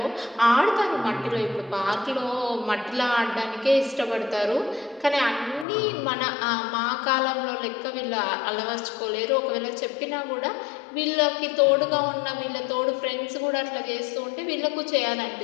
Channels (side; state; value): right; drops out; at 5.7 s